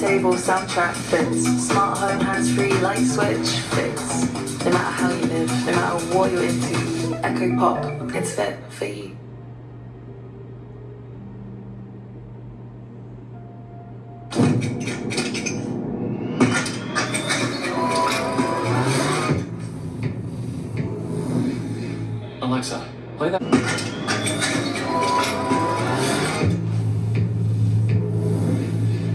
soundtrack fits. Smart home, hands-free, light switch fits. No matter how you live, no matter what you're into, Echo Pop, it's fit for you. Alexa, play that.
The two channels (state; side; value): identical; both; correlation 1.00